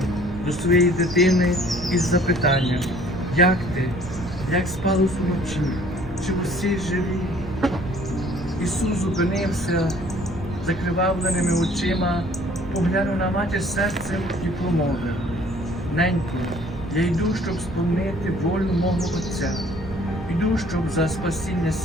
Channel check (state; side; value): noise; right; rumble, 12 dB below the sound